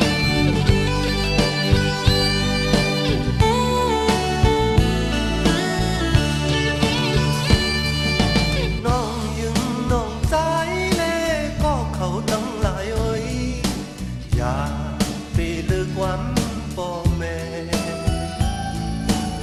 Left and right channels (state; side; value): identical; both; correlation 1.00